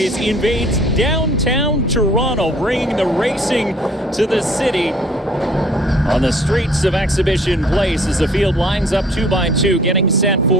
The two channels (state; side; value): normal; both; correlation 0.56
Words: invades downtown Toronto, bringing the racing to the city on the streets of Exhibition Place as the field lines up 2 by 2, getting set